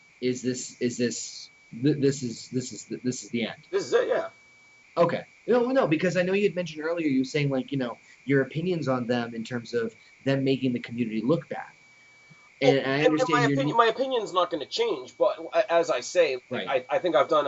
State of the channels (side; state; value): both; identical; correlation 1.00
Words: this is the end. This is it, yeah. Okay. No, because I know you had mentioned earlier, you were saying, like, your opinions on them in terms of them making the community look bad. And I understand my opinion's not going to change, but as I say, right. I think I've